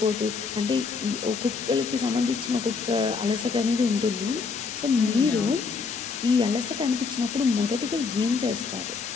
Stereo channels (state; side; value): quieter; right; 4.9 dB